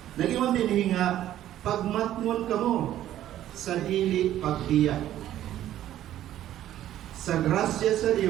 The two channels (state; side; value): quieter; left; 12.5 dB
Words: Nag-ingon din nga pagmatmon kamo sa dili pagbiya. Sa grasya sa